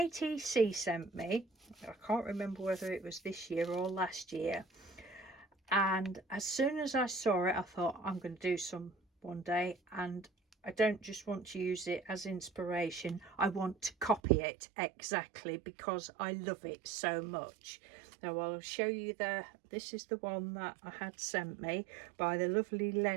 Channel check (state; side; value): drops out; left; at 14.2 s